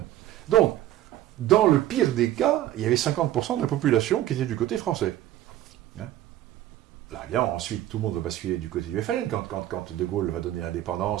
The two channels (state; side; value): quieter; left; 13.4 dB